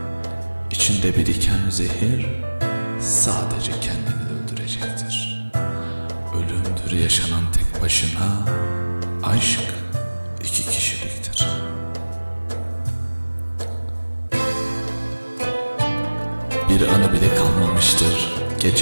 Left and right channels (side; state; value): both; inverted; correlation -1.00